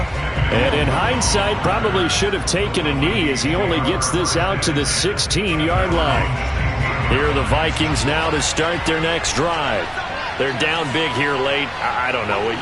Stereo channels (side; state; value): both; identical; correlation 1.00